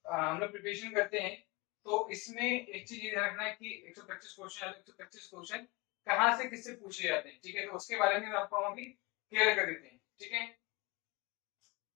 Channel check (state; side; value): quieter; right; 24.7 dB